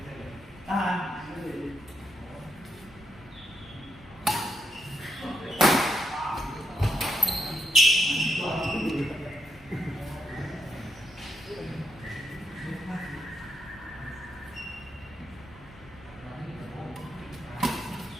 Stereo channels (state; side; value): normal; both; correlation 0.79